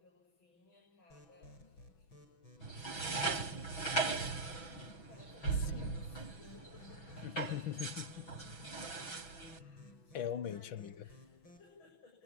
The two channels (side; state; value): right; late; 6.1 ms